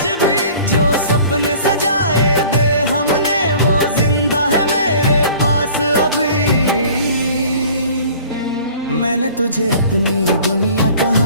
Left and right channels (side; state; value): both; inverted; correlation -0.48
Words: भी, जो सपने सजाए दे हमने वो जिंदा है मेरे पास अभी। मैंने तुझे अपनी दुनिया